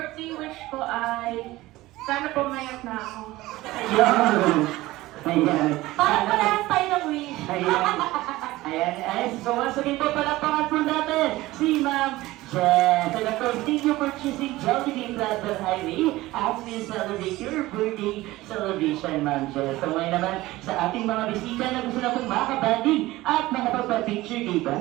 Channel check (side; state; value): left; quieter; 18.1 dB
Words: wish ko ay sana pumayat na ako. Ayun! Ayan. Parang parehas tayo ng wish. Ayan. Ayan. So once again po, palakpakan po natin si Ma'am Jess. And of course, thank you for choosing Jollibee Plaza Highway as we celebrate your birthday celebration, Ma'am Jess. So ngayon naman, sa ating mga bisita na gusto na pong makabanding at makapagpa-picture kay